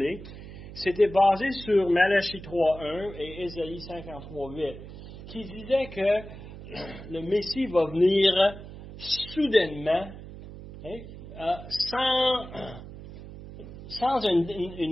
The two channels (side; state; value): right; noise; hum, 14 dB below the sound